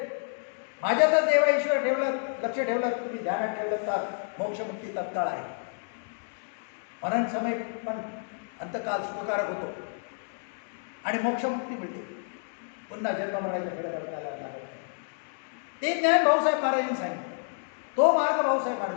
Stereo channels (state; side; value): silent; right; digital silence